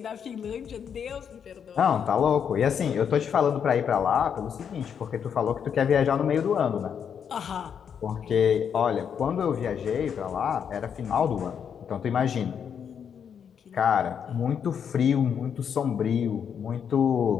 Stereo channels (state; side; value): quieter; right; 7.7 dB